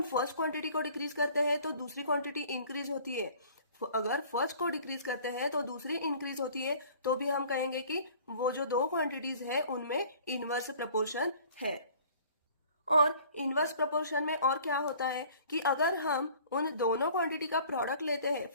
फर्स्ट क्वांटिटी को डिक्रीज करते हैं तो दूसरी क्वांटिटी इंक्रीज होती है। अगर फर्स्ट को डिक्रीज करते हैं तो दूसरी इंक्रीज होती है। तो भी हम कहेंगे कि वो जो दो क्वांटिटीज है उनमें इनवर्स प्रपोर्शन है। और इनवर्स प्रोपोर्शन में और क्या होता है कि अगर हम उन दोनों क्वांटिटी का प्रोडक्ट लेते हैं,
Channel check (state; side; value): inverted; both; correlation -0.51